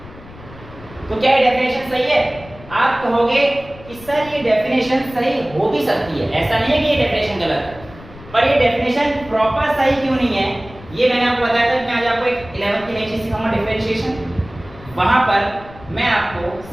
तो क्या ये डेफिनेशन सही है? आप कहोगे कि सर ये डेफिनेशन सही हो भी सकती है, ऐसा नहीं है कि ये डेफिनेशन गलत है, पर ये डेफिनेशन प्रॉपर सही क्यों नहीं है? ये मैंने आपको बताया था कि मैं आज आपको एक 11th की नई चीज सिखाऊंगा, डिफरेंशिएशन। वहां पर मैं आपको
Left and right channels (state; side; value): noise; left; rumble, 19 dB below the sound